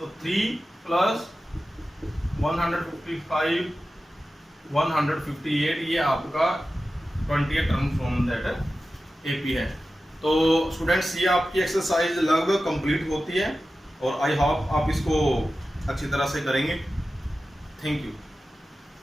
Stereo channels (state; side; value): normal; both; correlation 0.94